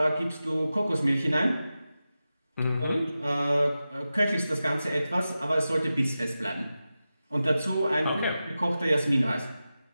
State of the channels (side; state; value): both; inverted; correlation -0.93